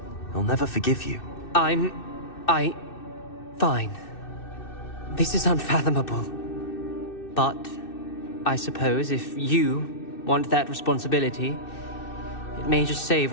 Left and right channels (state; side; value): late; right; 2.6 ms